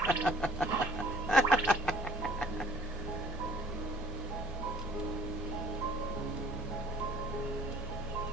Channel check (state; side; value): normal; both; correlation 0.55